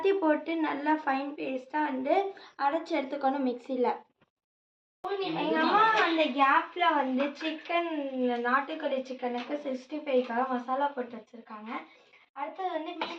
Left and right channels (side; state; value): both; identical; correlation 1.00